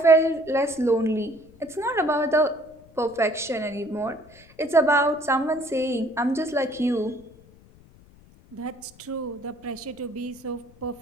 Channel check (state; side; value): noise; left; rumble, 25 dB below the sound